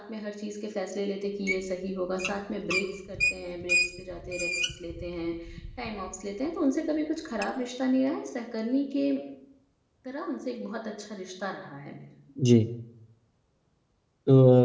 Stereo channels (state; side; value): identical; both; correlation 1.00